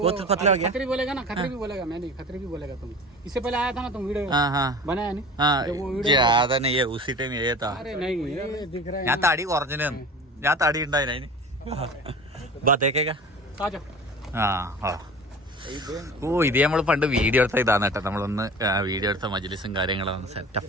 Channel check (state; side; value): normal; both; correlation 0.38